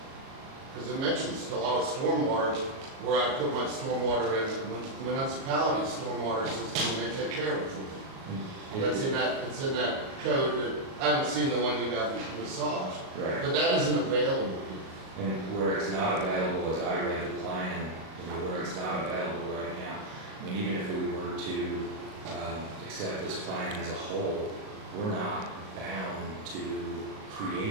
Because it mentions a lot of stormwater where I put my stormwater in municipality stormwater system and they take care of it. It's in that code that, I haven't seen the one you got massaged. Right. But that isn't available here. And where it's not available, as I read the plan, where it's not available right now, I mean, even if we were to accept this plan as a whole, we're not bound to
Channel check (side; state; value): left; late; 37 ms